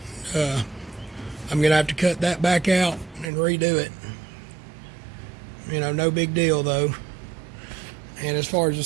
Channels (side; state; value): left; drops out; at 3.3 s